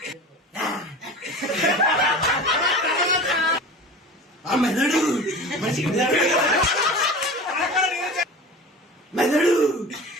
ఆ మెదడు మనిషికి మెదడు మెదడు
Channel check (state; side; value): normal; both; correlation 0.35